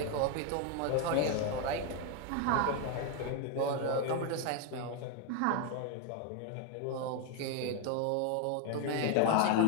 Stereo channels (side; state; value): both; different; correlation 0.01